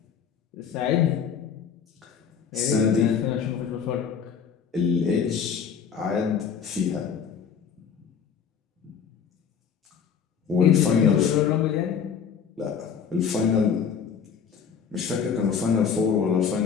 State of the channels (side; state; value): right; quieter; 7.0 dB